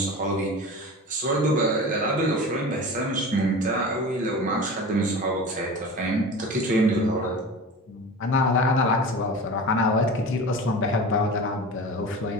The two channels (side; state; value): both; normal; correlation 0.33